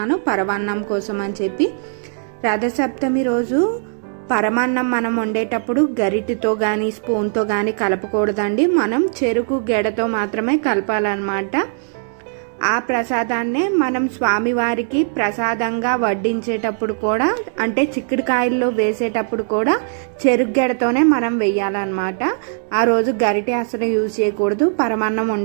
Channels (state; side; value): silent; left; digital silence